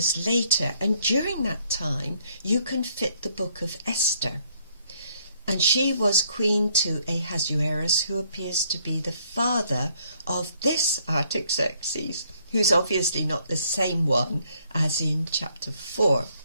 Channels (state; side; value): inverted; both; correlation -0.68